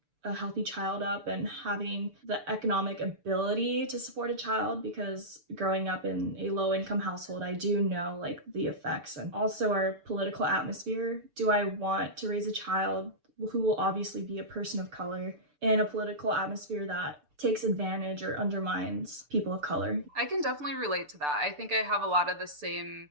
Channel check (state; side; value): late; left; 6.8 ms